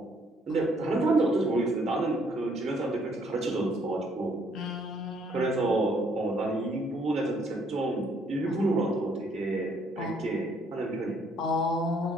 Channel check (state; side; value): normal; both; correlation 0.67